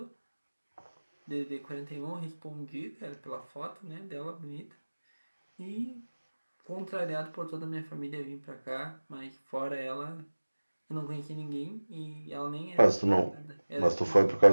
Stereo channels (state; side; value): inverted; both; correlation -1.00